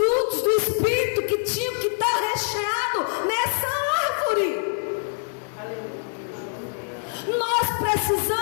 do Espírito que tinham que estar recheados nessa árvore. Nós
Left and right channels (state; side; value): silent; right; 61 dB below the other